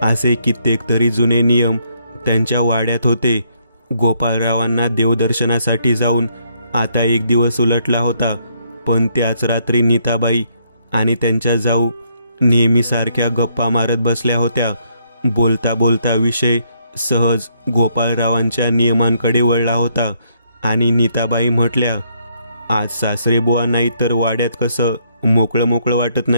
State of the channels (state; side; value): inverted; both; correlation -0.71